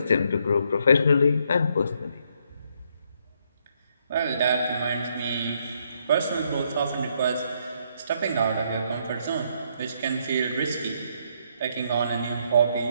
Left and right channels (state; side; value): inverted; both; correlation -0.73